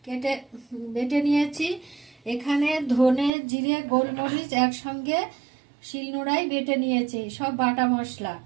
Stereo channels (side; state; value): left; drops out; at 3.3 s